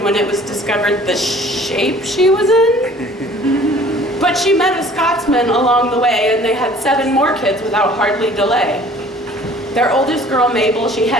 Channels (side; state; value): both; normal; correlation 0.51